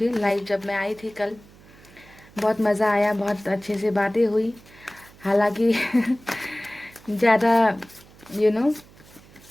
लाइव जब मैं आई थी कल, बहुत मज़ा आया, बहुत अच्छे से बातें हुई। हालांकि ज़्यादा यू नो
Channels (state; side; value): noise; right; hum, 24 dB below the sound